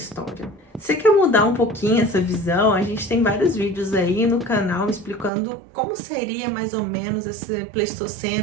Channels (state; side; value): drops out; left; at 5.3 s